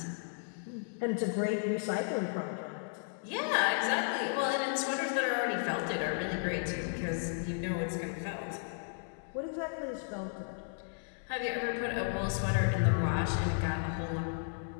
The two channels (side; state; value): right; silent; digital silence